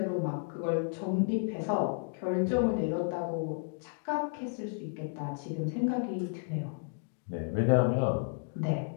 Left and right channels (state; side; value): silent; right; digital silence